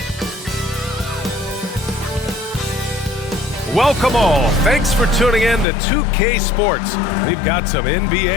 Welcome all. Thanks for tuning in to 2K Sports. We've got some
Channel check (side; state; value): right; drops out; at 5.7 s